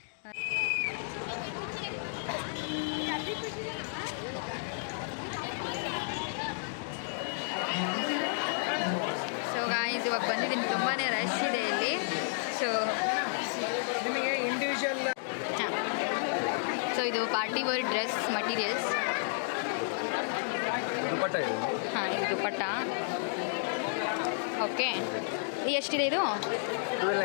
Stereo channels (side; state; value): right; silent; digital silence